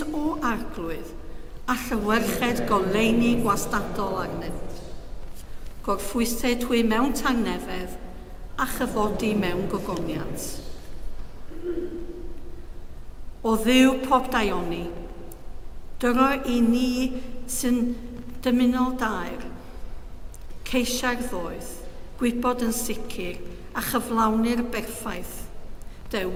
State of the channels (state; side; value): identical; both; correlation 1.00